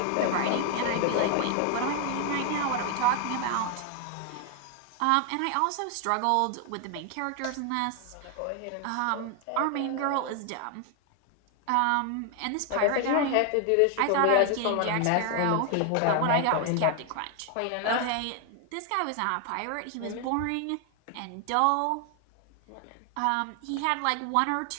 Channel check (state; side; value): different; both; correlation 0.00